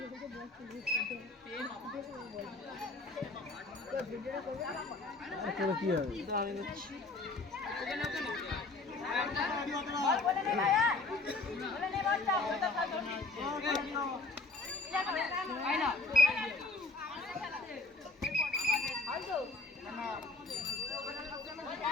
তোর কি হবে?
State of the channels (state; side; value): quieter; right; 3.4 dB